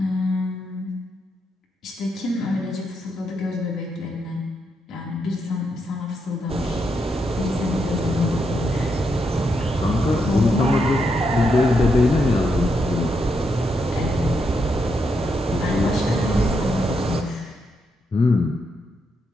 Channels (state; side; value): normal; both; correlation 0.81